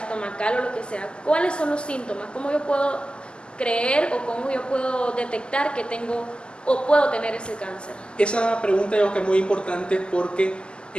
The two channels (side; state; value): right; late; 0.050 ms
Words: o lo que sea, ¿cuáles son los síntomas? ¿Cómo yo puedo creer o cómo yo puedo detectar que tengo o puedo tener ese cáncer? Esa pregunta yo creo que es muy importante porque